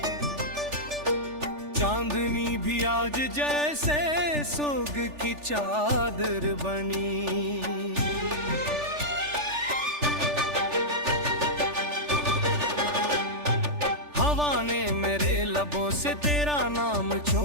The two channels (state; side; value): late; left; 3.4 ms